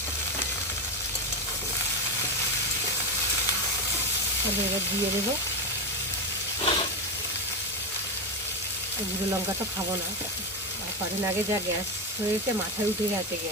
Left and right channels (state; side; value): normal; both; correlation 0.12